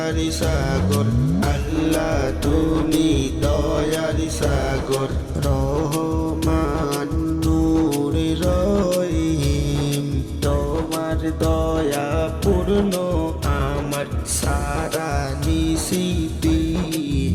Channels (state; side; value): identical; both; correlation 1.00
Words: সাগর, আল্লাহ তুমি দয়ার সাগর। রহমান নূর রহিম, তোমার দয়া পূর্ণ আমার সারা নিশিতি।